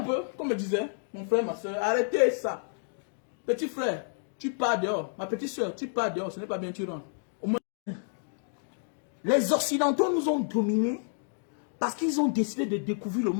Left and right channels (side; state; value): right; silent; digital silence